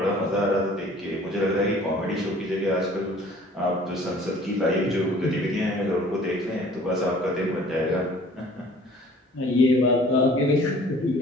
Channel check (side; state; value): both; normal; correlation 0.51